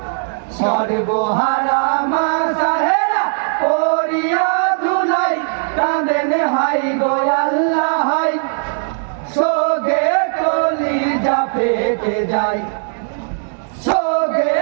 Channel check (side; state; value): left; silent; digital silence